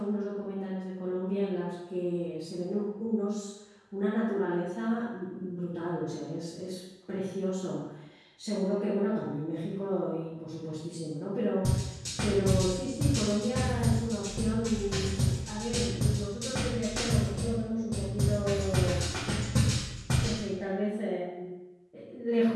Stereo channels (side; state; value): both; identical; correlation 1.00